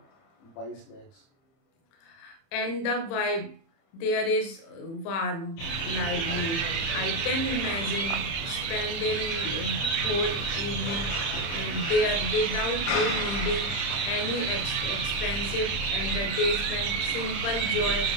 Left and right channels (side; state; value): right; late; 30 ms